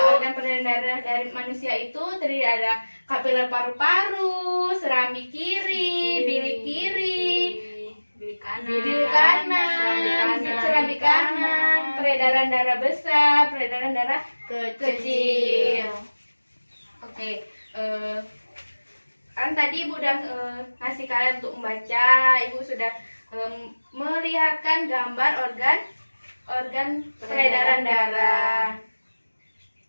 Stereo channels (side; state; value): both; inverted; correlation -1.00